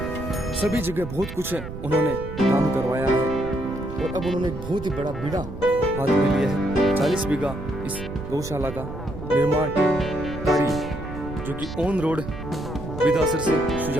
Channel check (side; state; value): right; noise; rumble, 10 dB below the sound